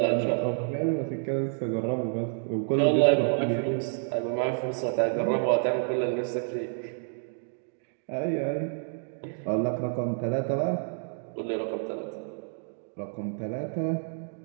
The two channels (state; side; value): silent; left; digital silence